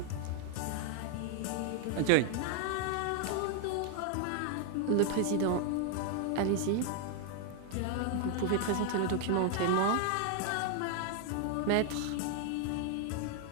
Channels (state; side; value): different; both; correlation 0.00